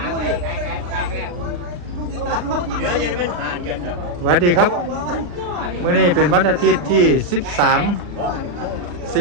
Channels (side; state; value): left; late; 39 ms